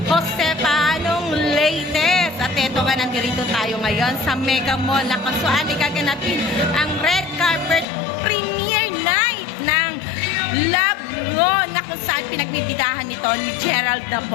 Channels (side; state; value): right; drops out; at 7.9 s